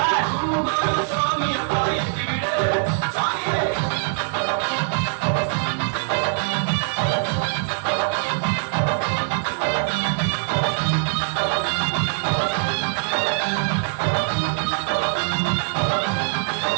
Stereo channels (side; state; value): left; silent; digital silence